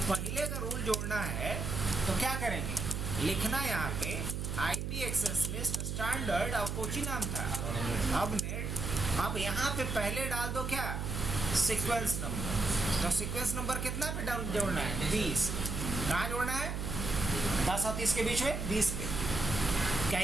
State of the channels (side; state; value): right; noise; hum, 3 dB below the sound